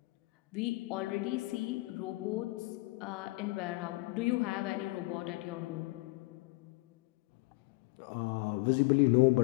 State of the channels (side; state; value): right; quieter; 23.2 dB